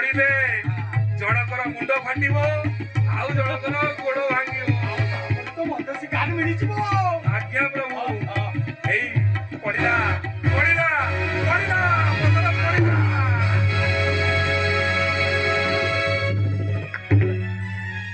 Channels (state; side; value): identical; both; correlation 1.00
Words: ଜଣକର ମୁଣ୍ଡ ଫାଟିବ ଆଉ ଜଣକର ଗୋଡ ଭାଙ୍ଗିବ। ତ ମତେ ଶିକାର ମିଳିଯିବ। ଆଜ୍ଞା ପ୍ରଭୁ। ଏଇ ପଡ଼ିଲା ପଡ଼ିଲା ପଡ଼ିଲା ପଥର ପଡ଼ିଲା।